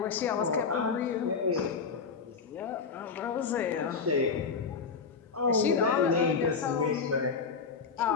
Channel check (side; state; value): right; quieter; 5.4 dB